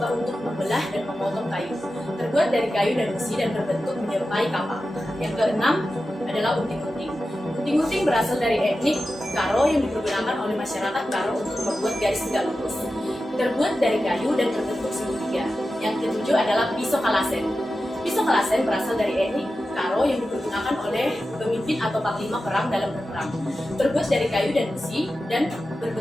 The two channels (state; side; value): normal; both; correlation 0.92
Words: untuk membelah dan memotong kayu. Terbuat dari kayu dan besi dan berbentuk menyerupai kapak. Yang keenam adalah unting-unting. Unting-unting berasal dari etnik Karo yang dipergunakan oleh masyarakat Karo untuk membuat garis tegak lurus. Terbuat dari kayu dan berbentuk segitiga. Yang ketujuh adalah pisau kalasen. Pisau kalasen berasal dari etnik Karo yang dipergunakan oleh pemimpin atau panglima perang dalam berperang. Terbuat dari kayu dan besi dan